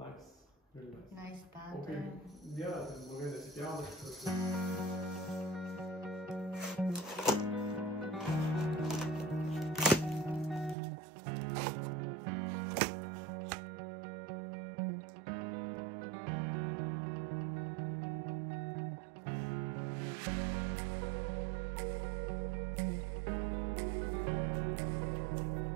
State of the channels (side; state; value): left; drops out; at 10.8 s